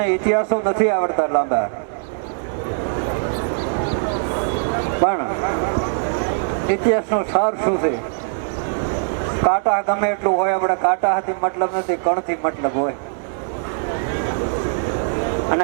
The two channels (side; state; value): left; silent; 65 dB below the other